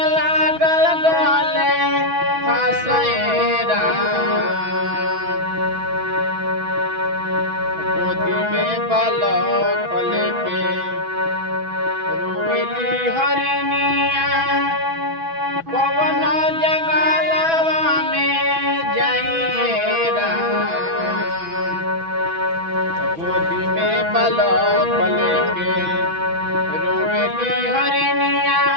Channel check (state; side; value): late; left; 6.1 ms